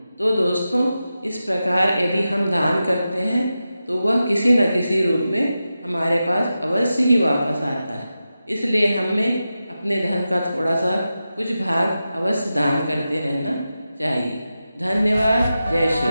तो दोस्तों, इस प्रकार यदि हम दान करते हैं तो वह किसी न किसी रूप में हमारे पास अवश्य ही वापस आता है। इसलिए हमें अपने धन का थोड़ा सा कुछ भाग अवश्य दान करते रहना चाहिए। धन्यवाद। जय श्री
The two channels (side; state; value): both; inverted; correlation -0.92